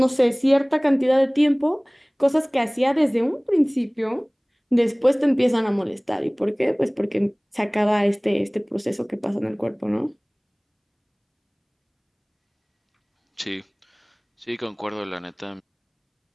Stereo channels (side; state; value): both; identical; correlation 1.00